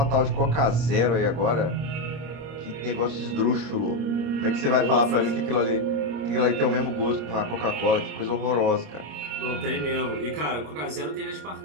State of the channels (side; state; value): left; late; 26 ms